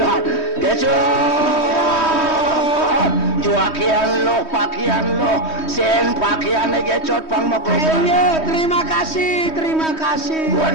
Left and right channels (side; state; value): right; late; 3.2 ms